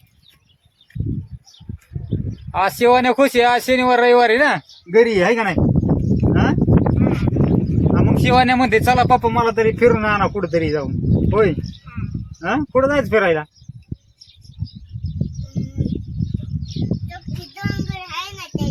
आज शिवान्या खुश आहे. आज शनिवार रविवारी ना घरी आहे का नाही. हा मग शिवान्या म्हणते चला पप्पा मला तरी फिरून आणा कुठंतरी जाऊन. होय हा कुठं जायचं फिरायला.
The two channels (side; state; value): both; identical; correlation 1.00